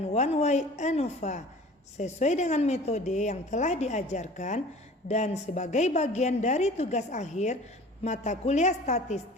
one way ANOVA sesuai dengan metode yang telah diajarkan dan sebagai bagian dari tugas akhir mata kuliah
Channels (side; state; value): both; normal; correlation 0.44